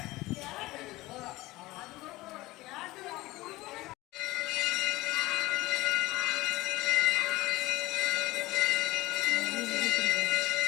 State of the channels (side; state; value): right; quieter; 19.1 dB